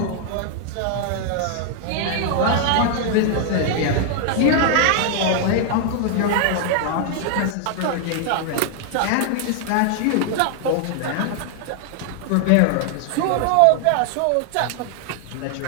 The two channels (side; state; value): both; different; correlation 0.00